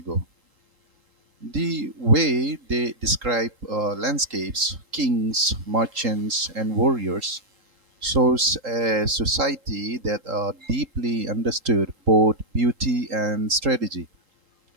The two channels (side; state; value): left; late; 3.8 ms